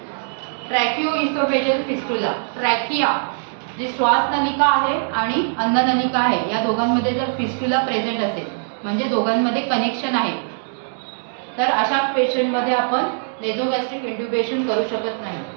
tracheoesophageal fistula. ट्रॅकिया जी श्वास नलिका आहे आणि अन्न नलिका आहे या दोघांमध्ये जर फिस्टुला प्रेझेंट असेल म्हणजे दोघांमध्ये कनेक्शन आहे तर अशा पेशंटमध्ये आपण नेझोगॅस्ट्रिक इंट्युबेशन करू शकत नाही.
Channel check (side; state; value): left; silent; digital silence